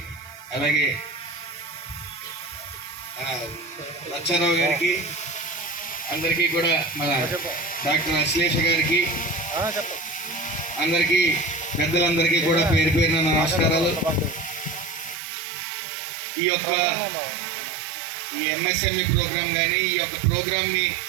అలాగే లచ్చారావు గారికి, అందరికీ కూడా మన డాక్టర్ అశ్లేష గారికి, అందరికీ పెద్దలందరికీ కూడా పేరు పేరున నమస్కారాలు. ఈ ఎంఎస్ఎంఈ ప్రోగ్రాం కానీ, ఈ యొక్క ప్రోగ్రాంని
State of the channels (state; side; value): drops out; left; at 15.2 s